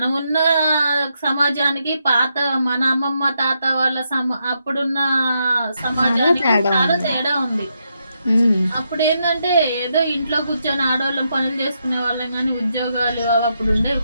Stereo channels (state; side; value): inverted; both; correlation -0.81